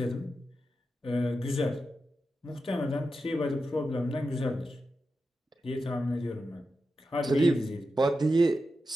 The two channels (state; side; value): normal; both; correlation 0.90